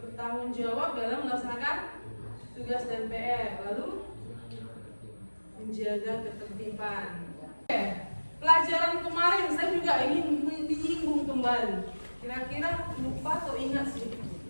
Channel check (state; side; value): inverted; both; correlation -1.00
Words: jawab dalam melaksanakan tugas dan PR, lalu menjaga ketertiban. Pelajaran kemarin saya juga ingin menyinggung kembali. Kira-kira lupa atau ingat sih?